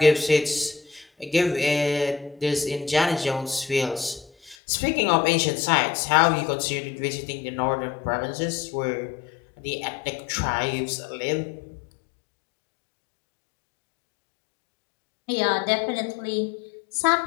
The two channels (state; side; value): drops out; right; at 4.5 s